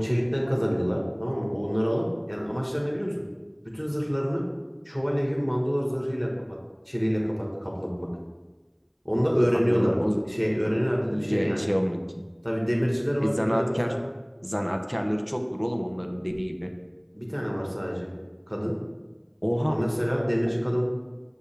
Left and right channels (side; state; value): both; identical; correlation 1.00